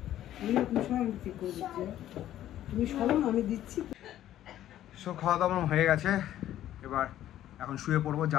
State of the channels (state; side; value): quieter; right; 12.5 dB